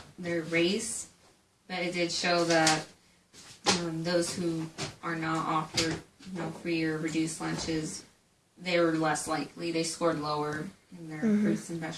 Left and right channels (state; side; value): identical; both; correlation 1.00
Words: their race, but it did show that those who are not offered free or reduced lunches, they were less likely. They scored lower in their fruits and